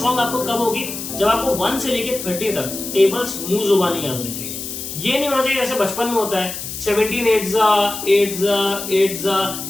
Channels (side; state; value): left; noise; hiss, 8 dB below the sound